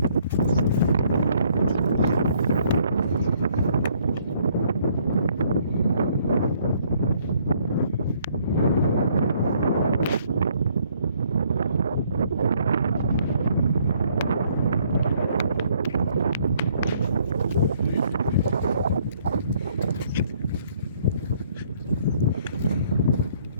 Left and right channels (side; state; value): both; inverted; correlation -0.65